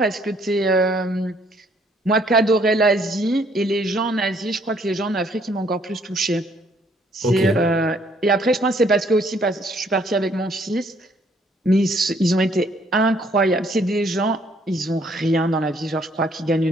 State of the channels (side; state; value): both; normal; correlation 0.65